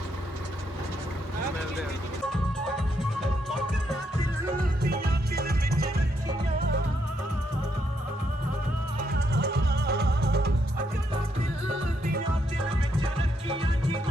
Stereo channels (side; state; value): both; normal; correlation 0.77